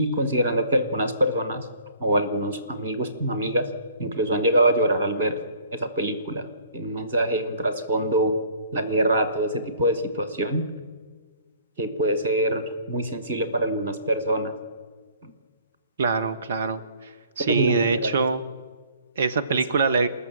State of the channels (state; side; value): inverted; both; correlation -0.55